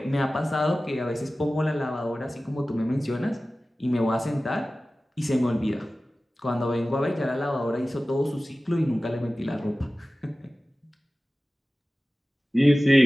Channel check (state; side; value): normal; both; correlation 0.96